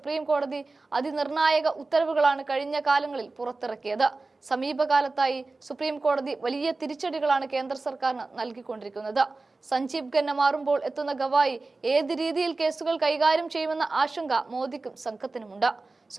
കോടതി അതിനിർണായക ഉത്തരവുകളാണ് കഴിഞ്ഞ കാലങ്ങളിൽ പുറത്തിറക്കിയത്. സമീപകാലത്തായി സുപ്രീം കോടതി വലിയ തിരിച്ചടികളാണ് കേന്ദ്ര സർക്കാരിന് നൽകിക്കൊണ്ടിരിക്കുന്നത്. സഞ്ജീവ് ഖന്ന മാറുമ്പോൾ എത്തുന്ന ഗവായി ഏത് രീതിയിൽ കേസുകൾ കൈകാര്യം ചെയ്യുമെന്ന ആശങ്ക മോദിക്കും സംഘത്തിനുമുണ്ട്.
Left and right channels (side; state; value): left; quieter; 3.5 dB